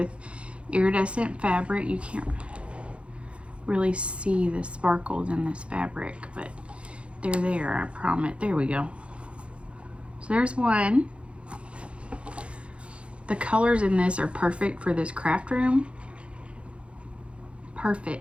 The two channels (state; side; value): late; left; 0.060 ms